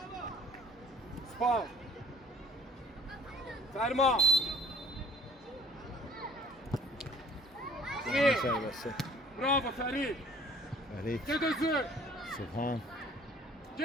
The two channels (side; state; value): both; normal; correlation 0.54